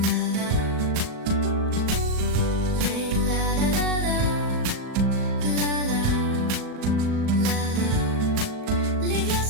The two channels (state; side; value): late; left; 38 ms